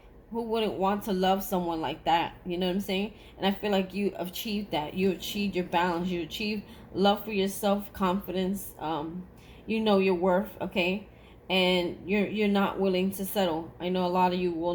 Who wouldn't want to love someone like that? You know what I'm saying? And I feel like you achieved that. You achieved your balance. You achieved love for yourself, confidence. You know your worth, okay? And you're not willing to settle. I know a lot of you will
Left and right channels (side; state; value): both; identical; correlation 1.00